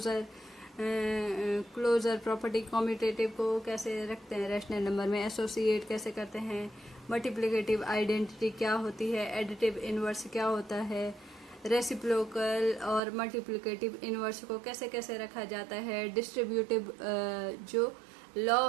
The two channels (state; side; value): drops out; left; at 13.0 s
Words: प्रॉपर्टी कम्यूटेटिव को कैसे रखते हैं रैशनल नंबर में, एसोसिएट कैसे करते हैं, मल्टीप्लिकेटिव आइडेंटिटी क्या होती है, एडिटिव इनवर्स क्या होता है, रेसिप्रोकल और मल्टीप्लिकेटिव इनवर्स को कैसे कैसे रखा जाता है, डिस्ट्रीब्यूटिव जो लॉ